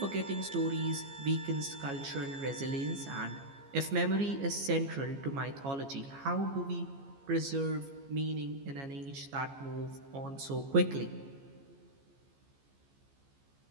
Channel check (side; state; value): left; late; 15 ms